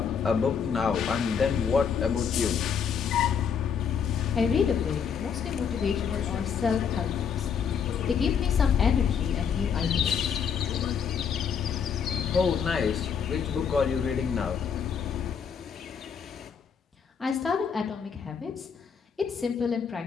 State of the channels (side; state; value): right; quieter; 7.0 dB